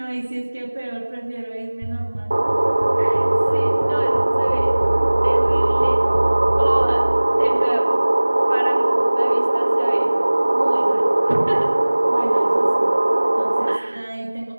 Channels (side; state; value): both; inverted; correlation -1.00